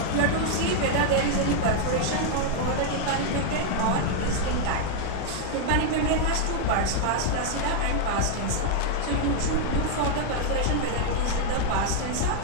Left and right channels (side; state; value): both; different; correlation 0.00